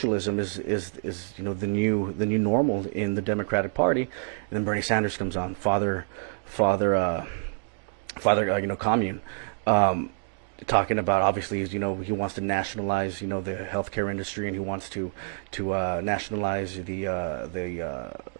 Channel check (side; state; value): left; silent; digital silence